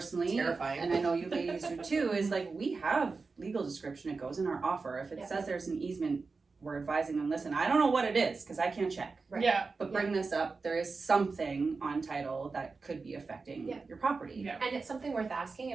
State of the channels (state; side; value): quieter; left; 4.3 dB